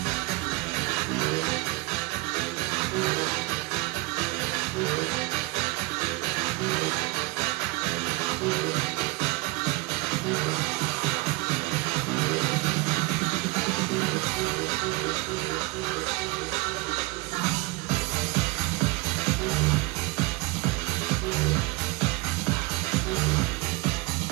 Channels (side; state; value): left; quieter; 23.5 dB